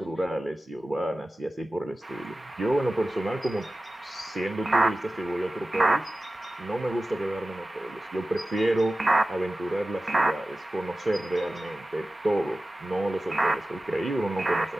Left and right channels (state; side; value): normal; both; correlation 0.96